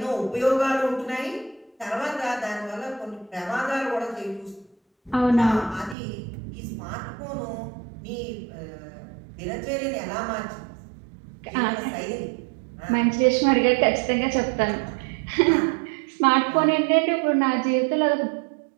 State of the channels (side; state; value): left; drops out; at 6.0 s